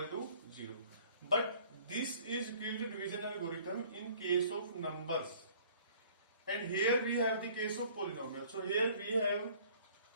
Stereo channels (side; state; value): both; inverted; correlation -0.54